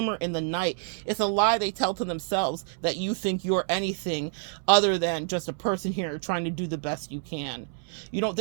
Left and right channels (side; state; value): left; silent; 60 dB below the other